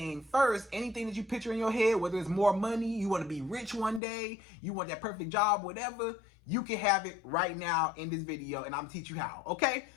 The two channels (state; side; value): drops out; right; at 4.0 s